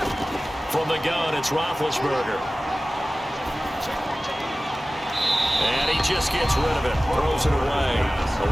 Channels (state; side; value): normal; both; correlation 0.97